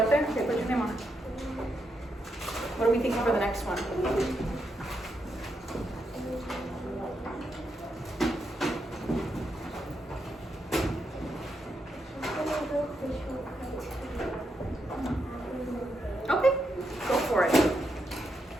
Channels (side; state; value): both; normal; correlation 0.82